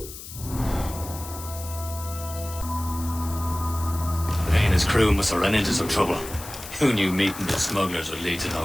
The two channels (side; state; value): left; noise; hiss, 13 dB below the sound